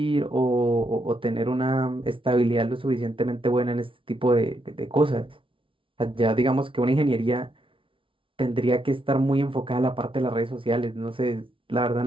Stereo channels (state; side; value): late; left; 0.25 ms